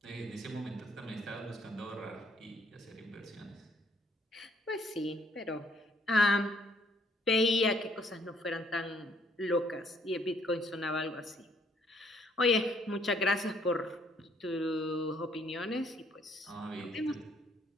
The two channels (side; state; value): both; normal; correlation 0.66